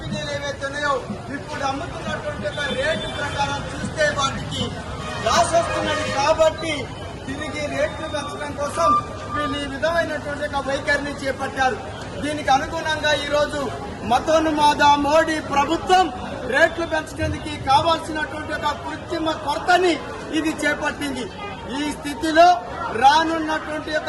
ఏవైతున్నాయో ఇప్పుడు అమ్ముతున్నటువంటి రేటు ప్రకారం చూస్తే వాటికి లాస్ వస్తున్నది. కాబట్టి తిరిగి రేట్లు పెంచడం కోసం వీళ్ళు ఈ విధమైనటువంటి ఒక వైఖరిని చేపట్టారు. దీనికి అనుగుణంగా ఈ రోజు మతోన్మాద మోడీ ప్రభుత్వం రేట్లు పెంచడానికి కావాల్సినటువంటి ఒక కృత్రిమ కొరతని ఇది చేపట్టింది. ఈ స్థితిలో రానున్నటువంటి ఒక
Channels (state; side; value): identical; both; correlation 1.00